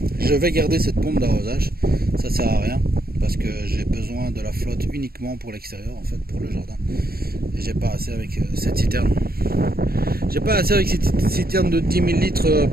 je vais garder cette pompe d'arrosage, ça sert à rien parce que j'ai besoin de la flotte uniquement pour l'extérieur, en fait, pour le jardin, et j'ai pas assez avec cette citerne. J'ai pas assez avec cette citerne de 10 000 litres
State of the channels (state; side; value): late; left; 0.44 ms